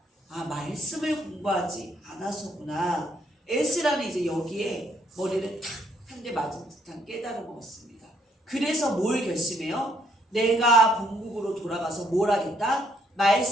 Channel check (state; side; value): normal; both; correlation 0.69